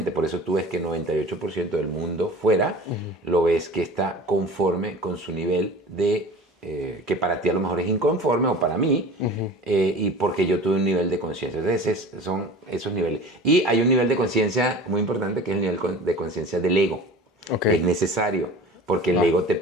Por eso tú ves que 98% del mundo fuera lo ves que está conforme con su nivel de, que para ti a lo mejor es inconforme, o para mí, y porque yo tuve un nivel de conciencia. Entonces son esos niveles. Y hay un nivel de conciencia muy importante, que es el nivel de conciencia del ego. Es necesario, porque el ego te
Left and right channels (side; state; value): both; normal; correlation 0.39